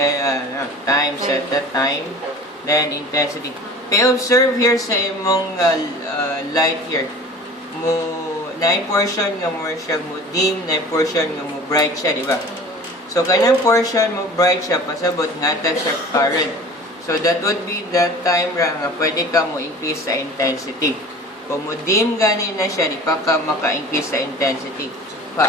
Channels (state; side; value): normal; both; correlation 0.42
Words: time, set the time, then intensity. Kaya observe here sa imong light here. Na portion nga mo siya mo dim, na portion nga mo bright siya, di ba? So, kanyang portion mo bright siya, pasabot nga ta siya current. So, that would be that time nga pwede ka mo increase sa intensity. Kung mo dim ganin na siya, di pa ka maka-increase sa intensity.